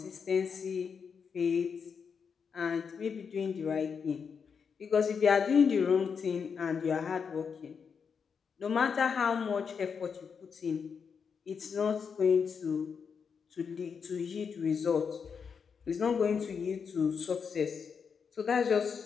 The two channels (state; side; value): quieter; right; 6.2 dB